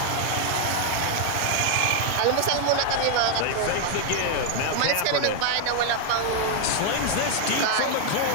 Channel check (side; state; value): both; different; correlation 0.00